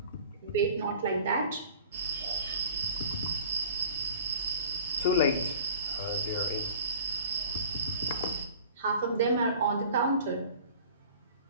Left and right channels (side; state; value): both; inverted; correlation -0.45